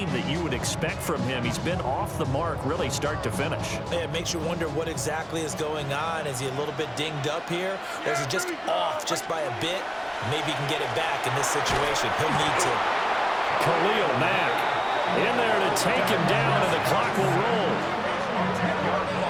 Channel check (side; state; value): both; identical; correlation 1.00